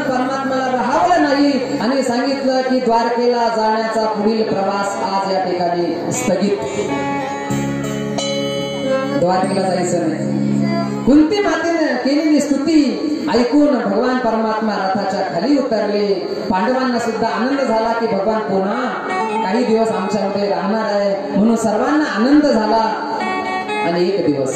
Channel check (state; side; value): identical; both; correlation 1.00